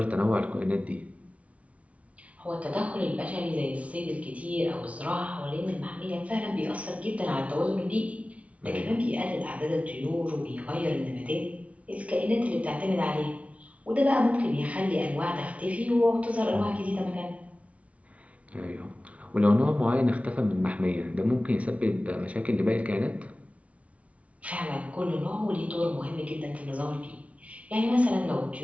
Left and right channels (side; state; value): left; late; 0.065 ms